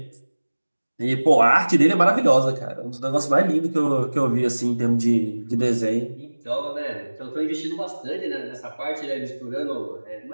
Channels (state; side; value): inverted; both; correlation -1.00